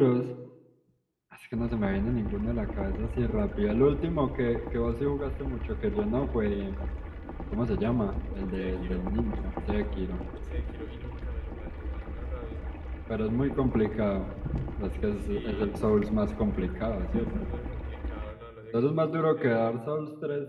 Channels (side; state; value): both; identical; correlation 1.00